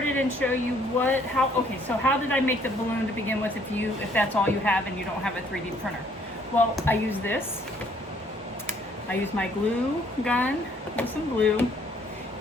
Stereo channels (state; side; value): normal; both; correlation 0.63